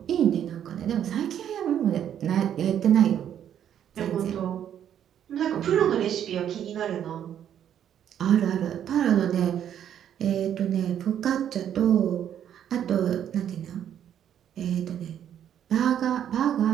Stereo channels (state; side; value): quieter; left; 9.8 dB